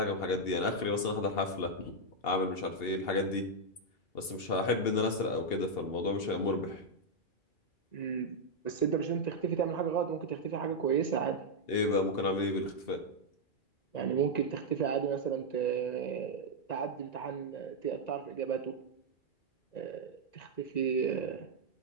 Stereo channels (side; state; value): right; late; 2.8 ms